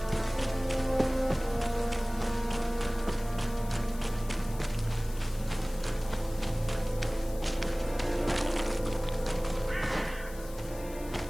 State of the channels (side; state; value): left; noise; hiss, 18 dB below the sound